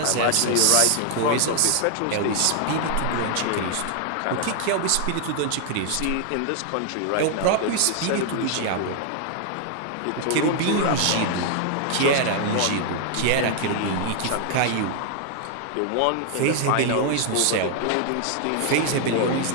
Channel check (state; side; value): different; both; correlation 0.00